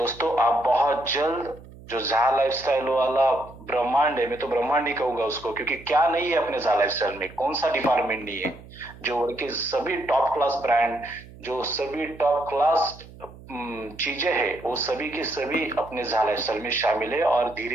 आप बहुत जल्द जो झा लाइफस्टाइल वाला ब्रह्मांड है, मैं तो ब्रह्मांड ही कहूंगा उसको, क्योंकि क्या नहीं है अपने झा लाइफस्टाइल में, कौन सा डिपार्टमेंट नहीं है, जो वर्ल्ड के सभी टॉप क्लास ब्रांड, जो सभी टॉप क्लास चीजें हैं वो सभी के सभी अपने झा लाइफस्टाइल में शामिल है और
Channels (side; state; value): right; noise; hum, 19 dB below the sound